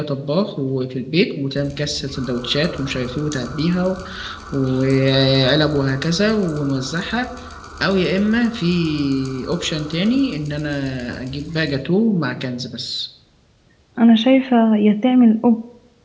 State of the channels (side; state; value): both; identical; correlation 1.00